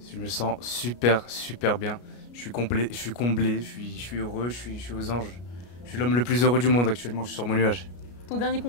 Je me sens super bien. Je suis complet, je suis comblé, je suis heureux, je suis aux anges. Je suis l'homme le plus heureux du monde actuellement, je suis sur mon nuage. Ton dernier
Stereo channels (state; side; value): late; right; 33 ms